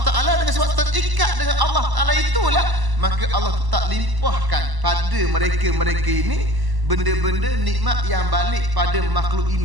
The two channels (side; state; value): left; late; 1.0 ms